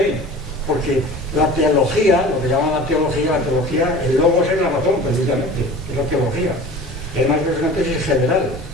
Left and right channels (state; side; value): normal; both; correlation 0.39